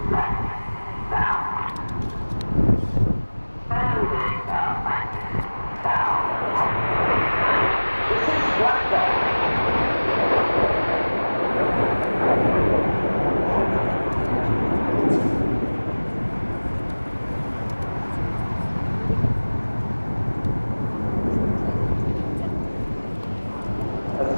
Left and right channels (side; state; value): both; inverted; correlation -1.00